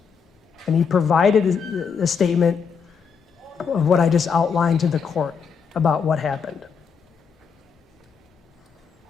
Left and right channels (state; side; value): quieter; right; 6.2 dB